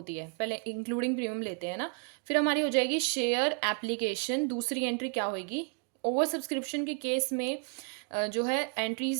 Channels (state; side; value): quieter; left; 36.4 dB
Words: है, पहले इंक्लूडिंग प्रीमियम लेते हैं ना। फिर हमारी हो जाएगी शेयर एप्लीकेशन। दूसरी एंट्री क्या होगी? ओवर सब्सक्रिप्शन के केस में जो है